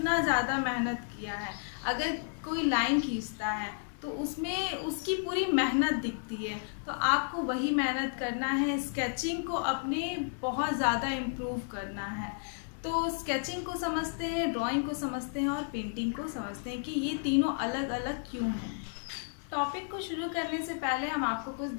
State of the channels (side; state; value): right; silent; digital silence